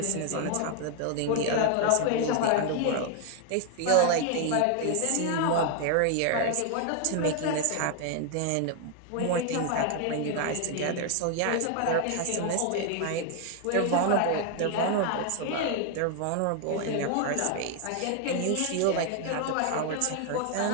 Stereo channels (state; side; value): different; both; correlation 0.00